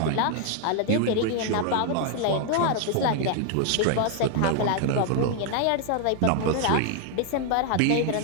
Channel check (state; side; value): different; both; correlation 0.00